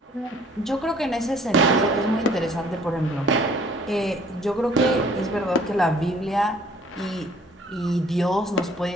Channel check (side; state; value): both; normal; correlation 0.56